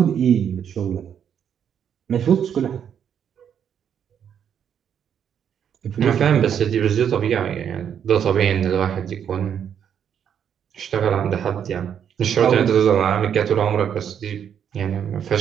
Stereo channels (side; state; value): left; quieter; 8.5 dB